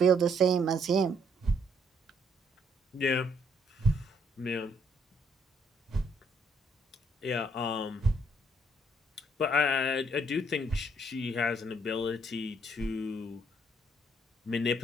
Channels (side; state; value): both; normal; correlation 0.68